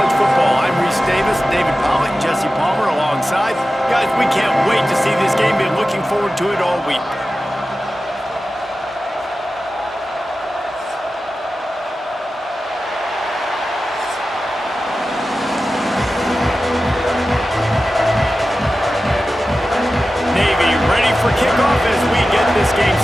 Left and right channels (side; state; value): both; normal; correlation 0.94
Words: Football, I'm Reese Davis, David Pollock, Jesse Palmer alongside. Guys, we can't wait to see this game. Been looking forward to it all week. Navy ready for kickoff as we get this game